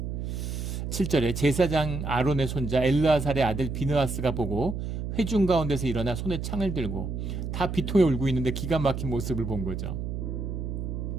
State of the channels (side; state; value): right; noise; hum, 4 dB below the sound